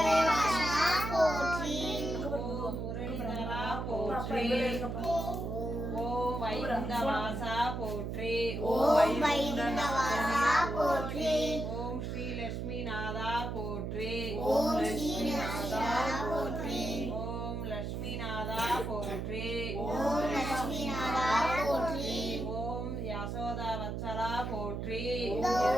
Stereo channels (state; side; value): noise; right; hum, 4 dB below the sound